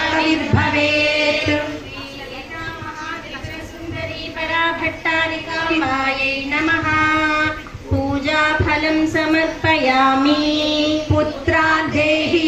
సుందరీ పరాభట్టారికాంబాయై నమః. పూజాఫలం సమర్పయామి. పుత్రాన్ దేహి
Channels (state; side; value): identical; both; correlation 1.00